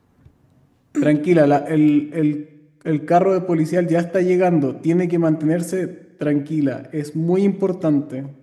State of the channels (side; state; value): both; identical; correlation 1.00